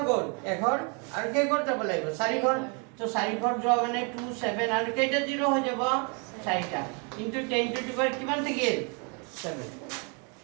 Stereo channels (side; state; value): left; quieter; 35.3 dB